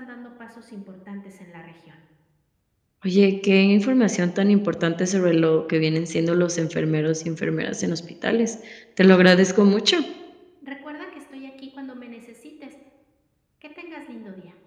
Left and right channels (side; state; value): both; identical; correlation 1.00